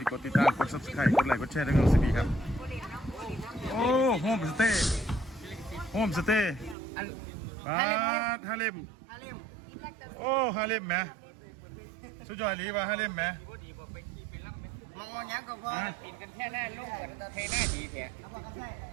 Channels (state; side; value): drops out; left; at 6.8 s